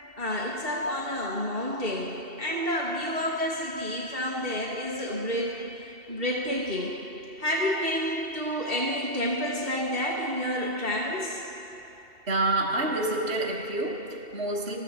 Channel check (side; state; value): left; late; 2.7 ms